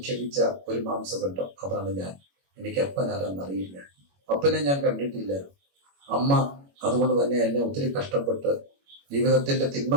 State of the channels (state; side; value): late; left; 21 ms